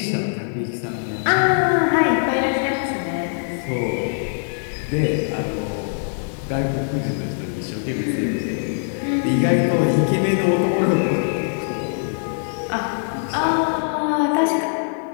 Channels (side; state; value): right; silent; 57 dB below the other